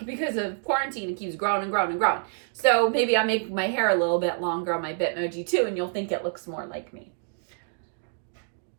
because of quarantine, it keeps growing and growing and growing. So maybe I'll make my hair a little bit longer on my Bitmoji too, and you'll think it looks more like me.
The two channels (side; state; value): left; silent; digital silence